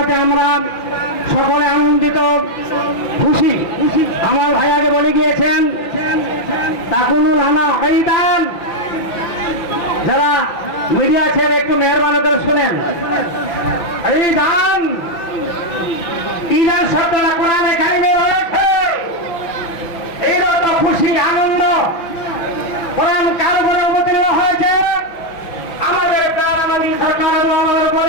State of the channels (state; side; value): late; right; 6.0 ms